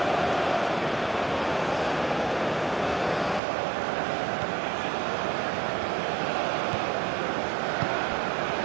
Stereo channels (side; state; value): left; drops out; at 3.4 s